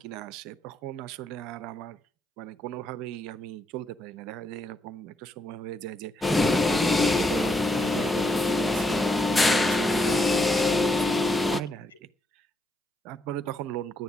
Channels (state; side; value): normal; both; correlation 0.77